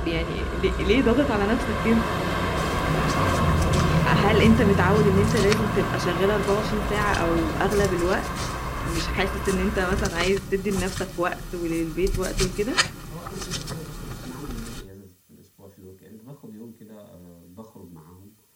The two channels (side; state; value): both; identical; correlation 1.00